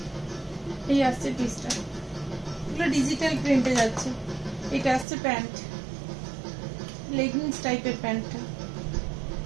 এই আসছে পিসটা, এগুলো ডিজিটাল প্রিন্টে যাচ্ছে। এটা আসছে প্যান্ট, লেগিংস টাইপের প্যান্টটা।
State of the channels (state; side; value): drops out; left; at 5.1 s